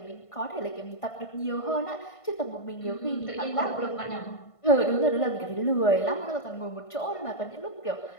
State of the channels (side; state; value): right; late; 1.5 ms